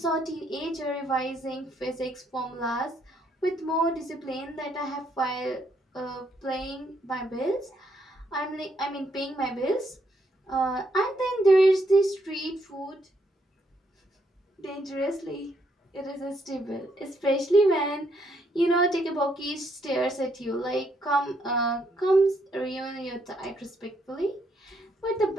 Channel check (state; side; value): normal; both; correlation 0.74